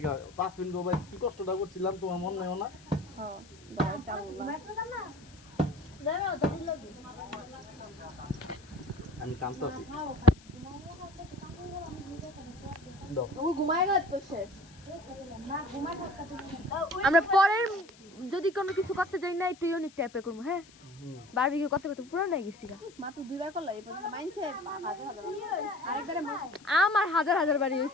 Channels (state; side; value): noise; left; hiss, 24 dB below the sound